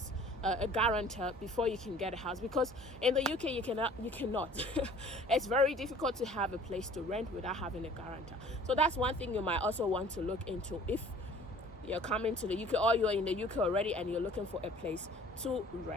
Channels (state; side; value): normal; both; correlation 0.50